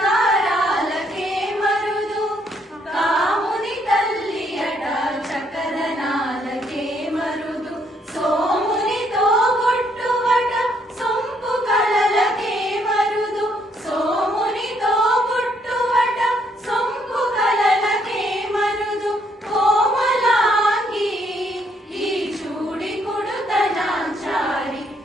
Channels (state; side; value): normal; both; correlation 0.70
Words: మరుదు కాముని తల్లి అట చక్కదనాలకే మరుదు సోమునితో బొట్టువట సొంపు కళలకే మరుదు సోమునితో బొట్టువట సొంపు కళలకే మరుదు కోమలాంగి ఈ చూడి కుడుతనాంచారి